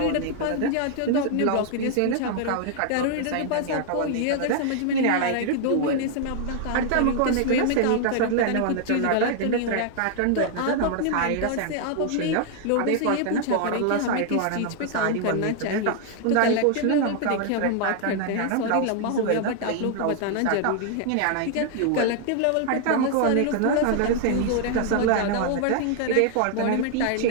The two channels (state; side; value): different; both; correlation 0.00